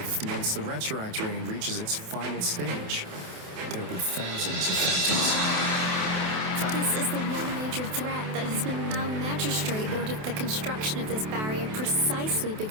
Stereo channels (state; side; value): late; left; 28 ms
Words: once the retroact rain reaches its final stage. There'll be thousands of phantoms. This is the one major threat that has been... Our magistrate ordered the construction of this barrier precisely